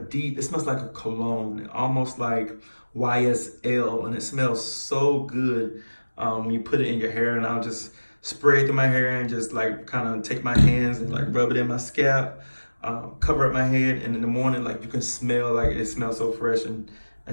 it smells like a cologne, almost like YSL, and it smells so good when you put it in your hair. And I'll just spray it through my hair and just like kind of take my hands and like rub it in my scalp. Cover up my head, and in the morning, like you can smell, like it smells so fresh and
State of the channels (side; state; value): both; inverted; correlation -1.00